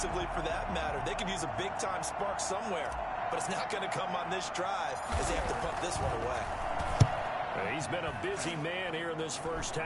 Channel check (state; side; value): identical; both; correlation 1.00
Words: for that matter. They could use a big-time spark somewhere, but it's not going to come on this drive as they have to punt this one away. He's been a busy man here in this first